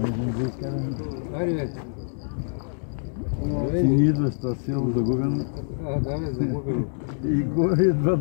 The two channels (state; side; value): silent; right; digital silence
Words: Ти не идваш това село загубено. Да, бе, загубено. И горе идва